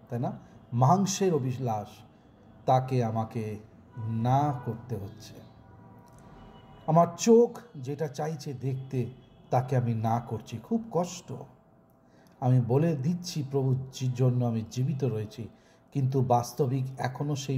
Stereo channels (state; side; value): identical; both; correlation 1.00